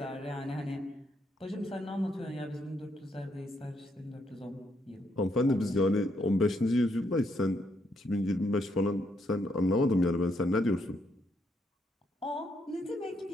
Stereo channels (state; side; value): normal; both; correlation 0.76